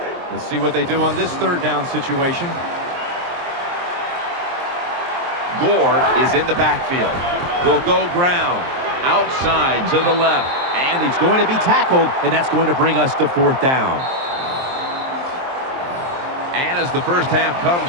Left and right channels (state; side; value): late; left; 23 ms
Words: Let's see what they do on this 3rd down situation. Gore is in the backfield. They'll go ground. Outside to the left. And he's going to be tackled, and that's going to bring us to 4th down. And as the first half